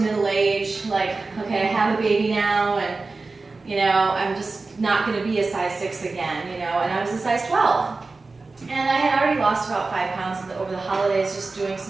age? Like, okay, I have a baby now, and I'm just not going to be a size 6 again, and I was a size 12. And I had already lost about 5 pounds over the holidays just doing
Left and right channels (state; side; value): quieter; left; 3.7 dB